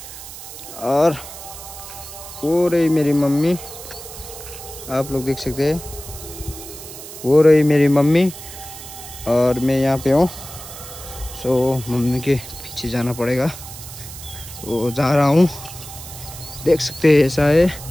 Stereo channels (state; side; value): noise; right; hiss, 13 dB below the sound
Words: और वो रही मेरी मम्मी, आप लोग देख सकते हैं, वो रही मेरी मम्मी और मैं यहाँ पे हूँ। सो मम्मी के पीछे जाना पड़ेगा, तो जा रहा हूँ। देख सकते हैं ऐसा है